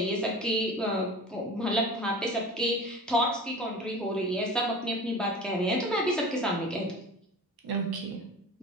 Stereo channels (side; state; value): both; normal; correlation 0.37